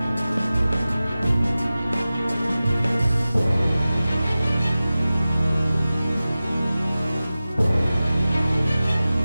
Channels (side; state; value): both; inverted; correlation -0.96